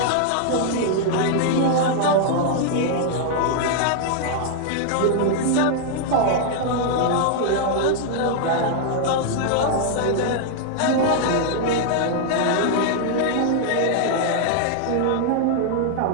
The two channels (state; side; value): different; both; correlation 0.00